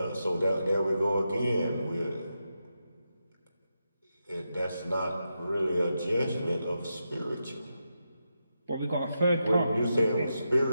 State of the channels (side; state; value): both; inverted; correlation -0.87